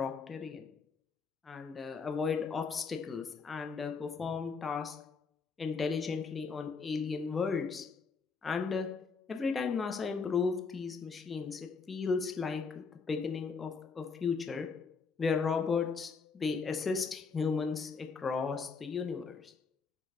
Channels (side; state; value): right; quieter; 5.1 dB